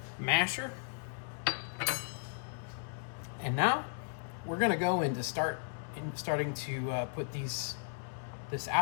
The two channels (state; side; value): silent; right; digital silence